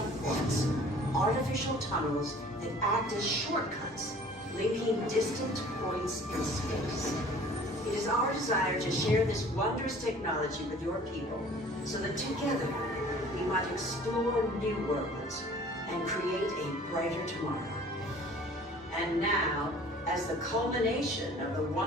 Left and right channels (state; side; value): normal; both; correlation 0.49